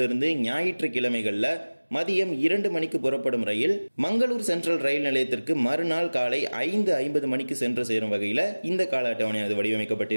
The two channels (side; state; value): both; inverted; correlation -1.00